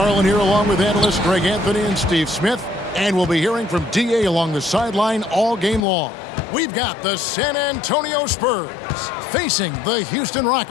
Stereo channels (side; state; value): right; drops out; at 5.8 s